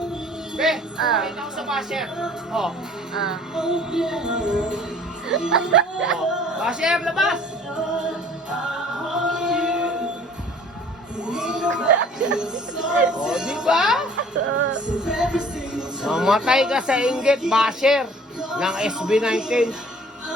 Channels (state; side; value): normal; both; correlation 0.52